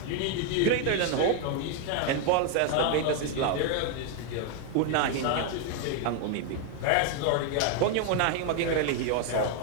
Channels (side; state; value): both; different; correlation 0.01